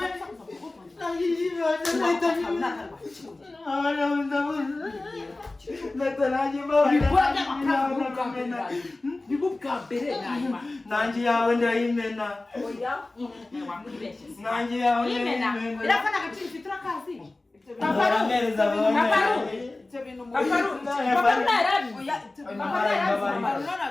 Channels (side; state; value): right; quieter; 3.0 dB